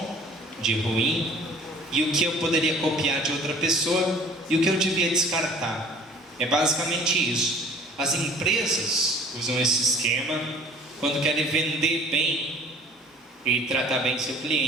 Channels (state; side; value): normal; both; correlation 0.49